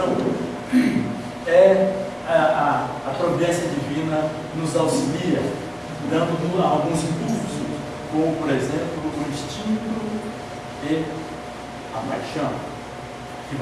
a providência divina nos auxilia, dando alguns impulsos, como por exemplo o instinto e a paixão, que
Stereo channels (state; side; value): identical; both; correlation 1.00